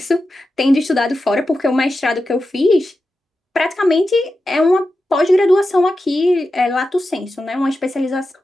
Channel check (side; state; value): both; normal; correlation 0.91